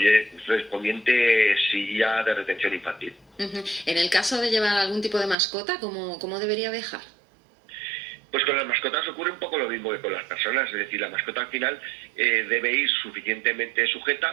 silla de retención infantil. En el caso de llevar algún tipo de mascota, ¿cómo debería viajar? Pues con las mascotas ocurre un poco lo mismo que con las personas, es decir, la mascota al final debe ir suficientemente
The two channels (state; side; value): drops out; left; at 5.4 s